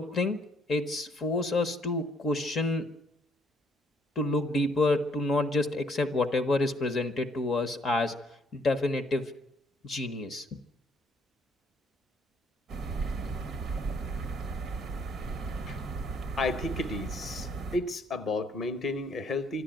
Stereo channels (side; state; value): both; normal; correlation 0.66